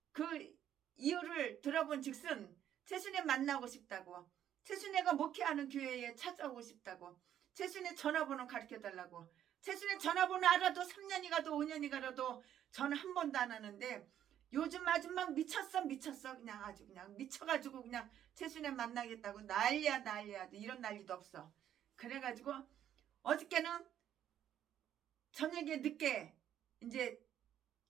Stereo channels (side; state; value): left; quieter; 10.6 dB